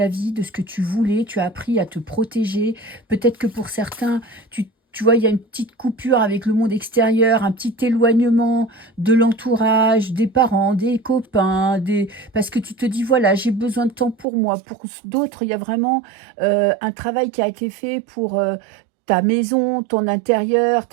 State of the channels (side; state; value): left; drops out; at 14.2 s